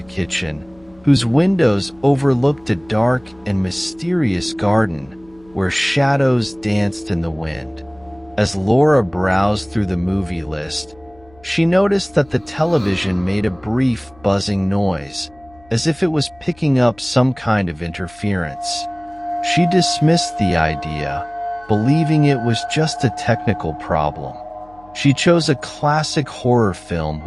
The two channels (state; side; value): noise; left; hum, 28 dB below the sound